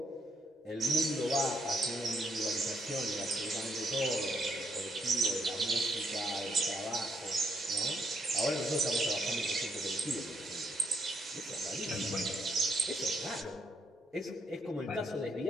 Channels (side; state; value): both; normal; correlation 0.75